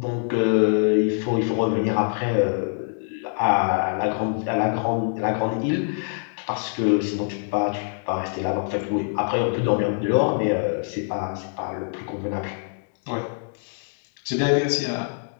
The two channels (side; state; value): right; silent; digital silence